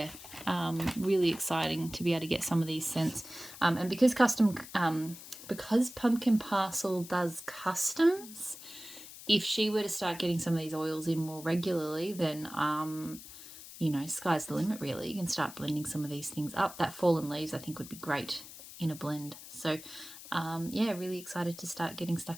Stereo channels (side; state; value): left; noise; hiss, 15 dB below the sound